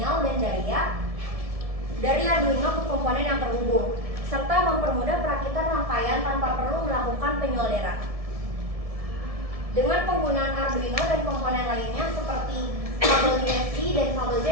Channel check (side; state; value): left; late; 1.7 ms